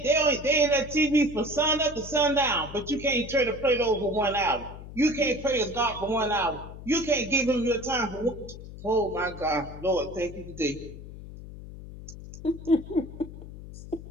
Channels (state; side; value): noise; left; hum, 13 dB below the sound